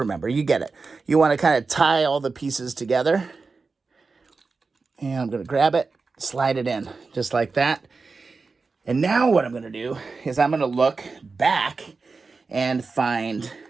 you get it. You want to kind of tie all the pieces together. And I'm going to grab it, slide it in, just like that. And now what I'm going to do is I'm going to look back and find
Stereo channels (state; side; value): quieter; left; 4.3 dB